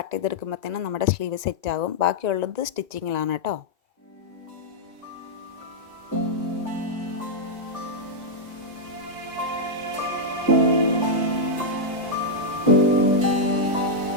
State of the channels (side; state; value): left; late; 1.9 ms